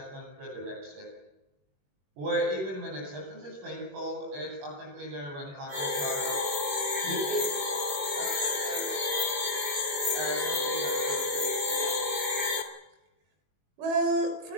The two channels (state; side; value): late; left; 21 ms